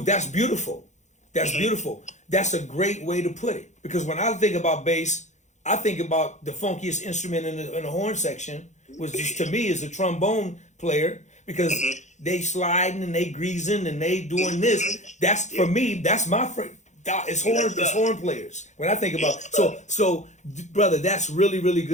that's beautiful. That's beautiful. That's a great way to put it. Because when I think about bass, I think about the funkiest instrument in the horn section, which just, to me is a trombone player, because they sliding and they greasing and they doing this. That's, for me, that's my it's horn players. When I think about so brother, that's really, really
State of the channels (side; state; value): right; late; 0.34 ms